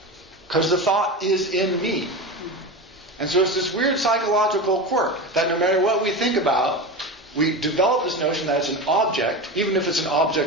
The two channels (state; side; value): normal; both; correlation 0.24